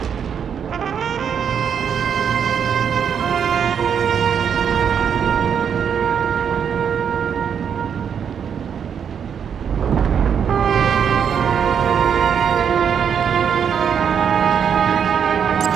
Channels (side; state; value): left; quieter; 7.7 dB